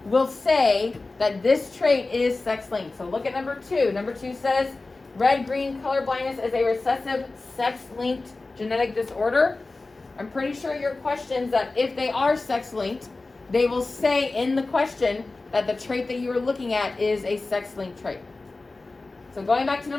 will say that this trait is sex-linked. So look at number 2. Number 2 says red-green color blindness is a recessive sex-linked genetic disorder. I'm pretty sure your questions that if they are sex-linked, they will say in the question that the trait that you are looking at is a sex-linked trait. So going back to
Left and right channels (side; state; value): right; quieter; 3.4 dB